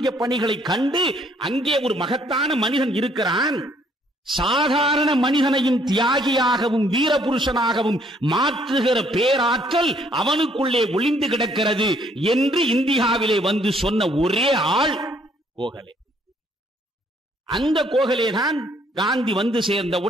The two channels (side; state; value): both; normal; correlation 0.65